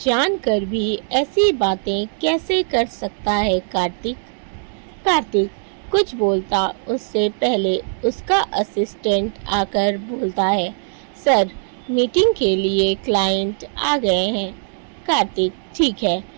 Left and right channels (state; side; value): silent; left; digital silence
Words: जानकर भी ऐसी बातें कैसे कर सकता है कार्तिक? कार्तिक कुछ बोलता उससे पहले उसका असिस्टेंट आकर बोलता है, सर मीटिंग के लिए क्लाइंट आ गए हैं। कार्तिक ठीक है,